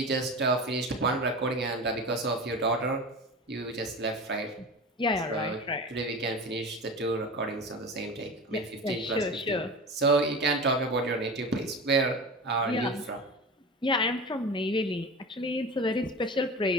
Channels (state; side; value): normal; both; correlation 0.31